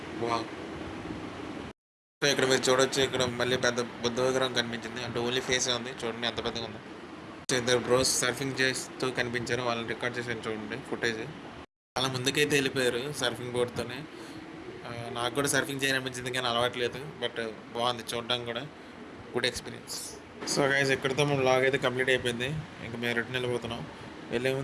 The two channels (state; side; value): identical; both; correlation 1.00